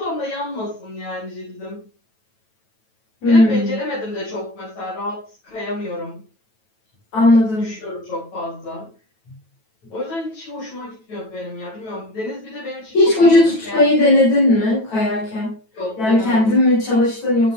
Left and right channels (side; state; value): right; late; 9.1 ms